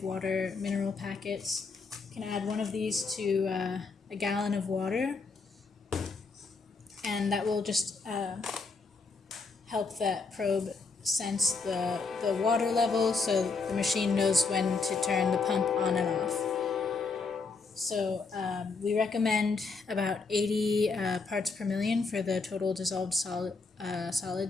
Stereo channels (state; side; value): quieter; right; 4.3 dB